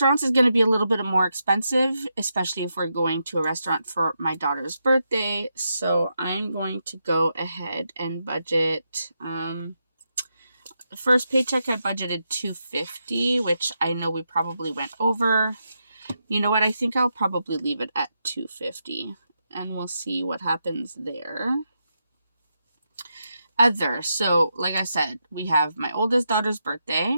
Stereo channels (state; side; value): inverted; both; correlation -0.84